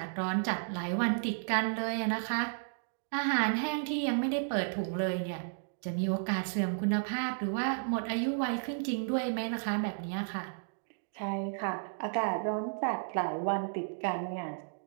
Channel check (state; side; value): silent; left; digital silence